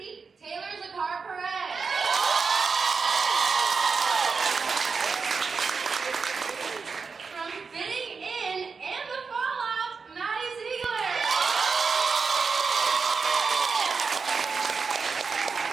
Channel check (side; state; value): left; quieter; 5.1 dB